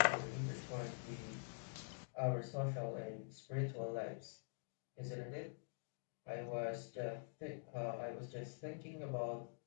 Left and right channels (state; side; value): silent; right; digital silence